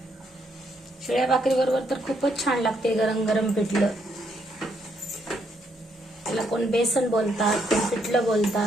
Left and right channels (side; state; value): both; normal; correlation 0.74